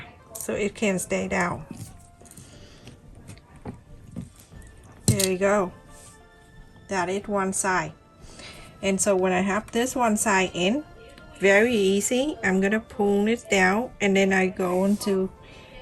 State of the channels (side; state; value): both; identical; correlation 1.00